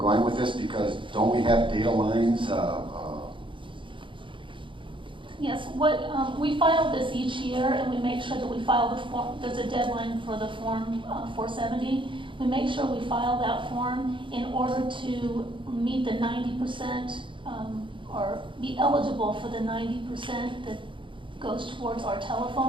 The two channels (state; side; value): late; left; 0.24 ms